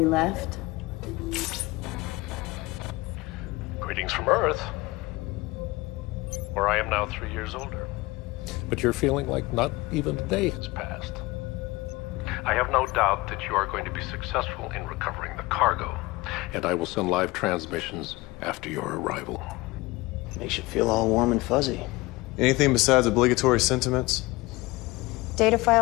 left. Greetings from Earth, where I am now 3 years older. But you're feeling like not even a day has passed. I have no doubt that you are going to be successful in recovering the cargo, and I will send live transmissions after your arrival. Makes you feel all warm and fuzzy. Anything besides obligatory sentiments? Data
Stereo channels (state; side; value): quieter; right; 21.6 dB